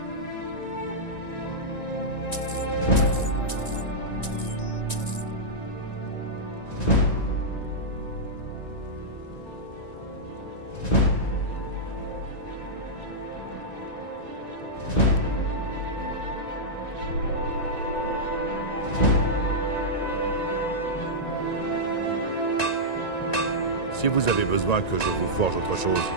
Si vous avez besoin que je vous forge autre chose,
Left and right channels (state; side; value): late; right; 1.9 ms